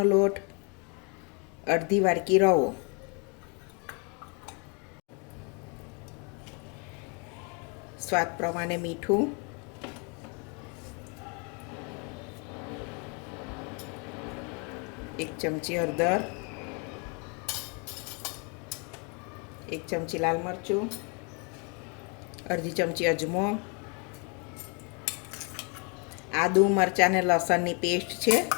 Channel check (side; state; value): right; quieter; 34.9 dB